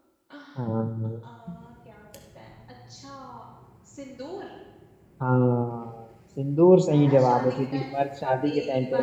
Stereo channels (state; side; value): identical; both; correlation 1.00